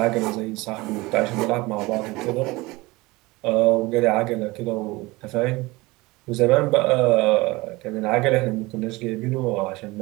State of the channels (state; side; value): quieter; left; 21.9 dB